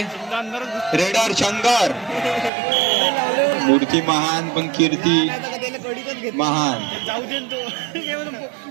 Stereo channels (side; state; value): left; drops out; at 2.5 s